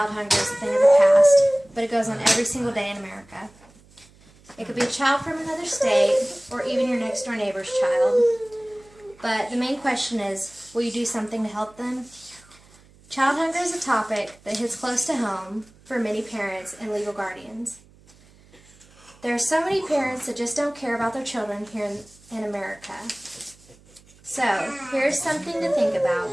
hunger as a thing of the past, but it goes on every single day in America. It could be a child from another state, or even your next door neighbor's child. But the main question is, will you do something to help them? Child hunger is a topic that hits close to home for many parents and legal guardians. There are so many parents that just don't care about their children here in America. So, here's something to think about.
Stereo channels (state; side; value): noise; right; hum, 27 dB below the sound